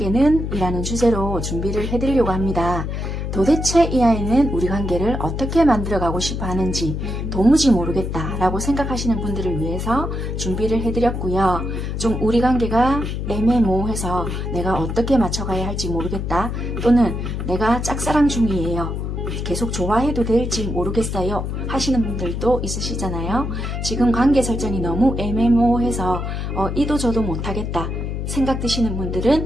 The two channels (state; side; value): noise; left; hum, 3 dB below the sound